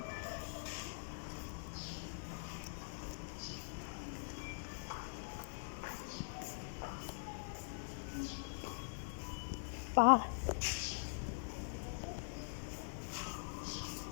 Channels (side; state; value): right; silent; digital silence